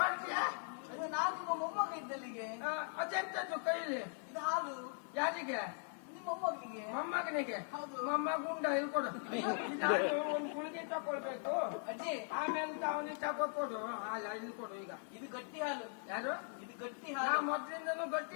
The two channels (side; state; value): right; silent; 51 dB below the other